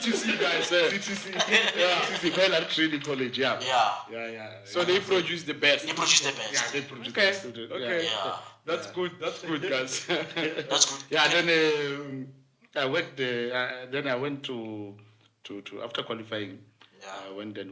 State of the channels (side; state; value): both; identical; correlation 1.00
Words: guys. CTC, CTC, Baylor Training College, yeah. Yeah. So they produce the best. They produce the best. Yeah, they produced Okay. the student. Okay. Yeah. That's good, guys. That's good. Yeah, then I worked. Then I went to after qualifying. Yeah. I went